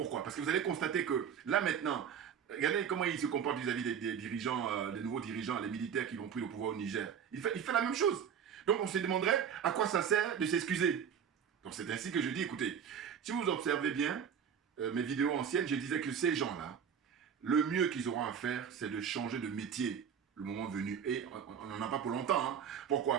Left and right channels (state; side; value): quieter; left; 7.8 dB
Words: Parce que vous allez constater que là, maintenant, regardez comment il se comporte vis-à-vis des dirigeants, des nouveaux dirigeants, les militaires qui vont pris le pouvoir au Niger. Il fait la même chose. Donc, on se demanderait à quoi ça sert de s'excuser. Donc, c'est ainsi que je dis, écoutez, si vous observez bien mes vidéos anciennes, je disais que ces gens-là, le mieux qu'ils auront à faire, c'est de changer de métier le moment venu. Et on n'en a pas pour longtemps. Hein. Pourquoi?